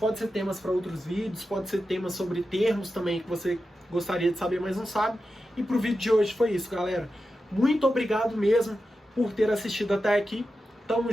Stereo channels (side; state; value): both; normal; correlation 0.91